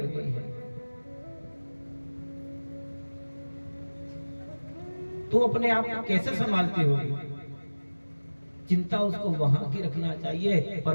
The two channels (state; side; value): inverted; both; correlation -1.00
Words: गई है। तू अपने आप को कैसे संभालती होगी? चिंता उसको वहां की रखना चाहिए, पर